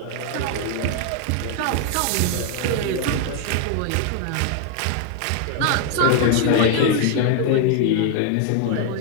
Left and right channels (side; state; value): both; different; correlation 0.01